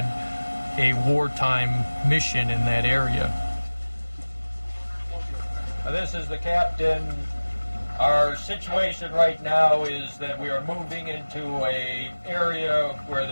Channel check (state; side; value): inverted; both; correlation -1.00